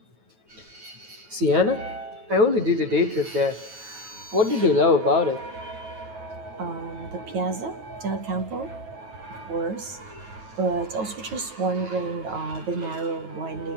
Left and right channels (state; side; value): late; left; 9.3 ms